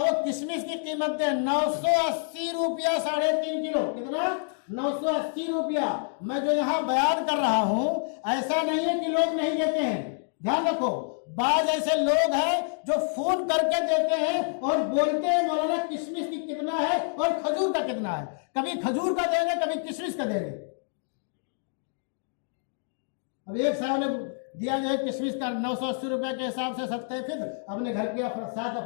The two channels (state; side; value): silent; right; 60 dB below the other